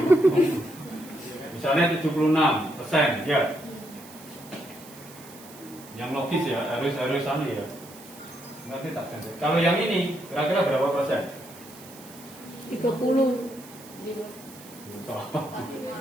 Misalnya 76% ya. Yang logis ya, harus sama ya. Nanti tak ganti. Kalau yang ini kira-kira berapa persen? 30.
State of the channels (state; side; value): noise; right; hiss, 19 dB below the sound